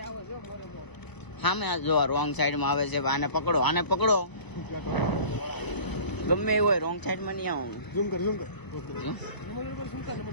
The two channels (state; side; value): late; right; 1.0 ms